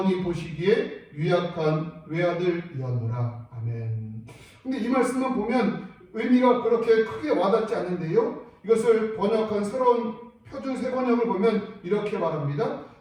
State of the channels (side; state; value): both; identical; correlation 1.00